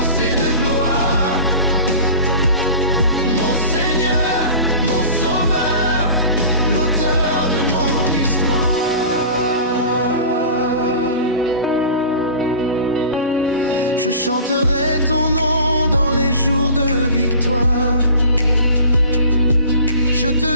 et de gloire. Mon Seigneur, mon Sauveur, l'auteur de mon histoire. Je chanterai ton nom dans les jours de victoire. Je te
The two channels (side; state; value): both; inverted; correlation -0.40